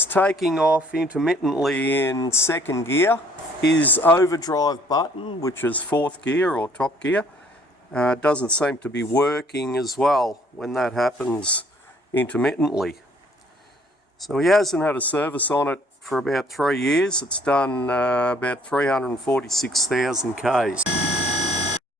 taking off intermittently in second gear. His overdrive button, which is fourth gear or top gear, doesn't seem to be working as well when that happens intermittently. So he hasn't had a service on it for about 3 years. It's done about 346,000 Ks.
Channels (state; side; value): normal; both; correlation 0.60